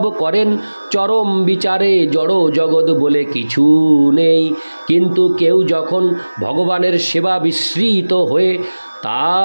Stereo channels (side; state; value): both; inverted; correlation -1.00